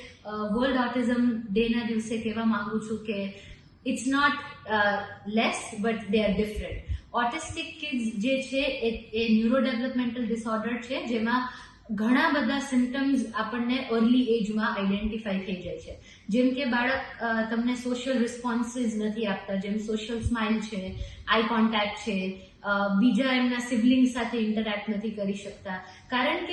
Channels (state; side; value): identical; both; correlation 1.00